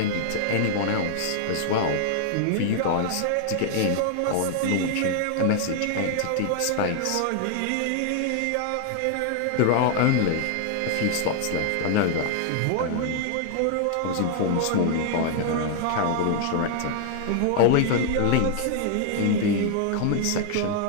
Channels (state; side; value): different; both; correlation 0.00